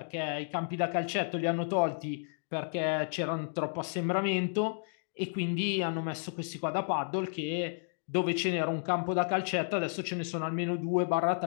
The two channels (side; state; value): right; silent; digital silence